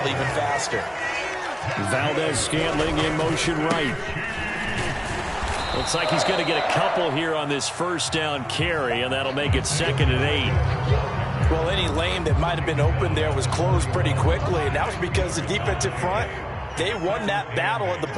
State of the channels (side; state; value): both; identical; correlation 1.00